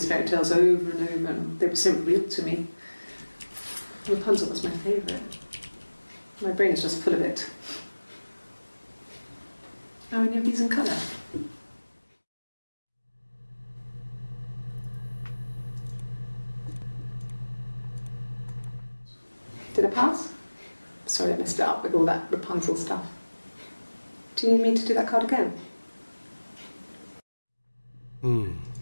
fairy tales over and over, and they were so real to me. Rapunzel was my favourite. My brain is just full of it. Are any of these in colour? Did I pass? Sorry, I messed it up with all that Rapunzel stuff. Do you need me to do that card again?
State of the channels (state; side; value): inverted; both; correlation -1.00